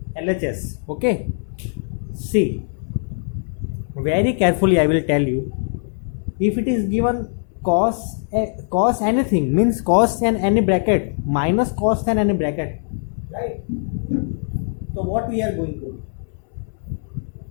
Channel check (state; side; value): silent; right; 64 dB below the other